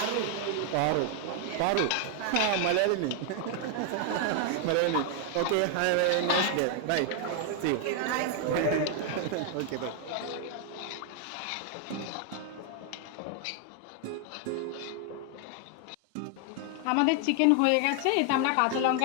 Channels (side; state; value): both; different; correlation 0.00